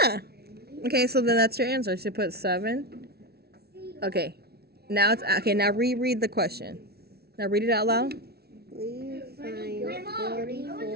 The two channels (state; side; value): late; left; 0.46 ms